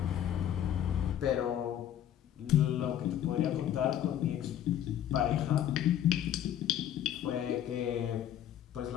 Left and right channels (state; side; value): quieter; right; 10.7 dB